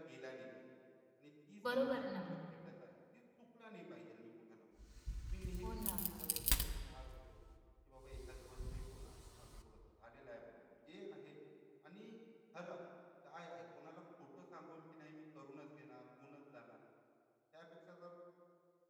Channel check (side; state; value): both; identical; correlation 1.00